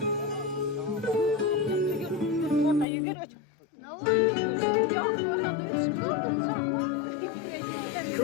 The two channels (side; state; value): right; drops out; at 2.9 s